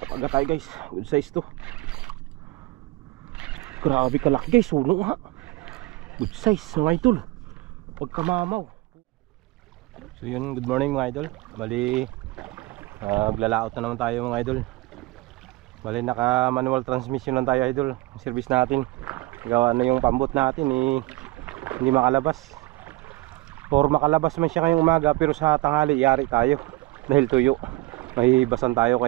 tayo guys. Good size to. Grabe kalaki guys. Suno ha. Good size mga idol. Pagkamamaw. So yun, good morning mga idol. Bali maglalaot na naman tayo mga idol. Bali naka manual transmission lang tayo idol. Yung service natin, gawa na yung pambot natin hindi makalabas. Or makalabas man siya ngayong umaga, pero sa tanghali yari tayo dahil tuyo. Mahihibasan tayo,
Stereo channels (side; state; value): left; quieter; 20.9 dB